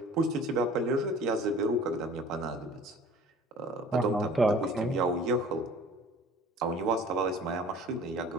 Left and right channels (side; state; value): both; normal; correlation 0.47